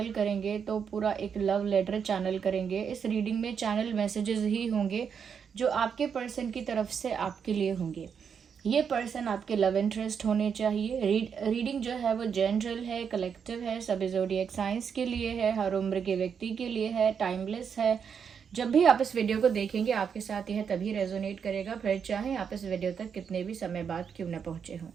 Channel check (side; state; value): left; quieter; 7.0 dB